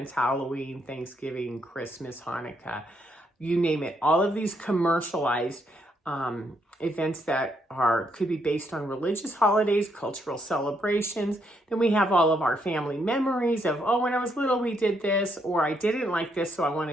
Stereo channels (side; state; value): both; normal; correlation 0.75